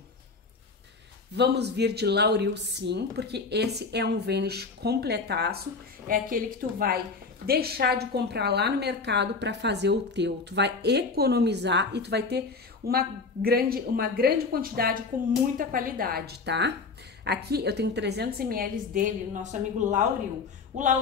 Vamos vir de Lauril sim, porque esse é um Vanish completaço, é aquele que tu vai deixar de comprar lá no mercado para fazer o teu. Tu vai economizar e tu vai ter uma grande quantidade com muita qualidade, tá? Aqui eu tenho 300 ml dele, nosso amigo Lauril. O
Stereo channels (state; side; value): quieter; right; 4.4 dB